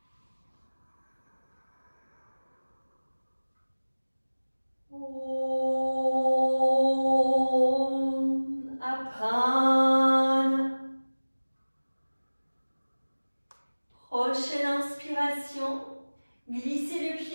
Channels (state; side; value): inverted; both; correlation -1.00